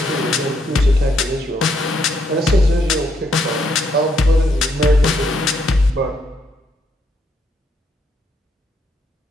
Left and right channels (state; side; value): normal; both; correlation 0.74